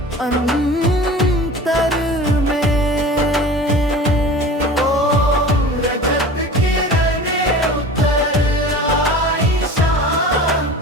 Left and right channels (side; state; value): both; normal; correlation 0.38